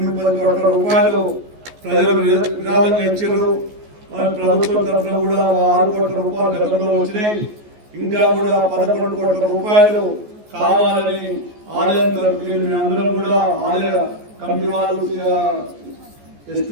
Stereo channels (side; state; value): left; late; 14 ms